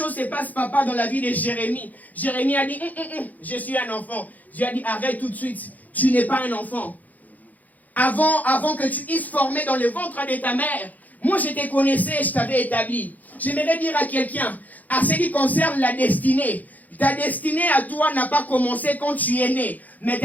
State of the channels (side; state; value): right; late; 0.080 ms